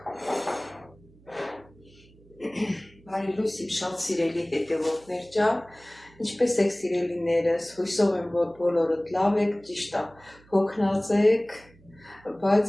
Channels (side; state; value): right; noise; hum, 27 dB below the sound